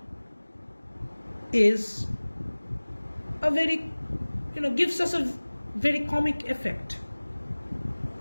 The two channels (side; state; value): both; inverted; correlation -1.00